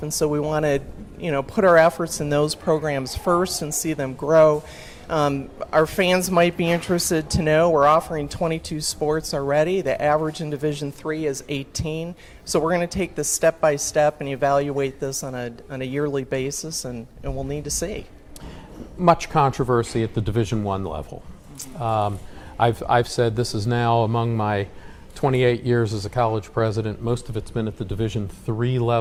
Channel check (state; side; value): identical; both; correlation 1.00